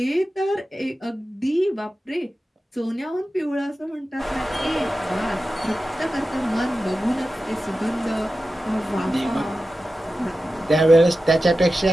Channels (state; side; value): normal; both; correlation 0.93